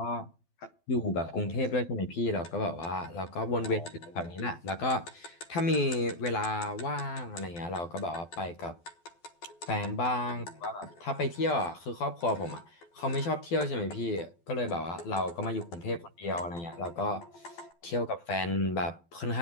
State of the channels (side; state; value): right; late; 12 ms